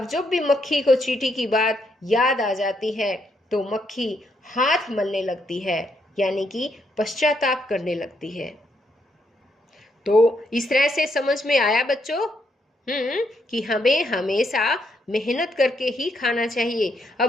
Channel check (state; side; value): normal; both; correlation 0.76